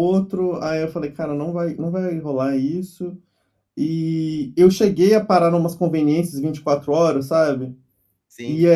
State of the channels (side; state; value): both; identical; correlation 1.00